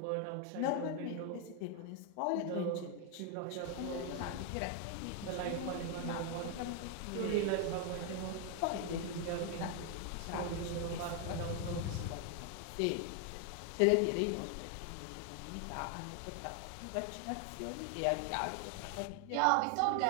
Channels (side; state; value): both; different; correlation 0.00